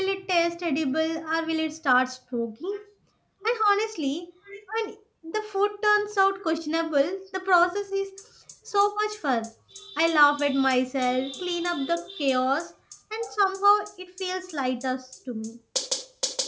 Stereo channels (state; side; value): identical; both; correlation 1.00